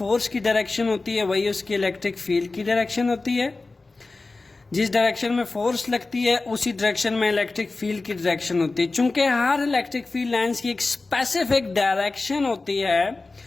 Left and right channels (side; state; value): right; quieter; 3.5 dB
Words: की डायरेक्शन होती है वही उसकी इलेक्ट्रिक फील्ड की डायरेक्शन होती है। जिस डायरेक्शन में फोर्स लगती है उसी डायरेक्शन में इलेक्ट्रिक फील्ड की डायरेक्शन होती है। चूंकि हर इलेक्ट्रिक फील्ड लाइंस की एक स्पेसिफिक डायरेक्शन होती है,